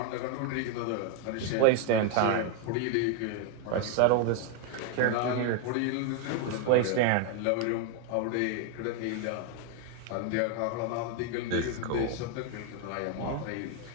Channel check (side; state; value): both; different; correlation 0.01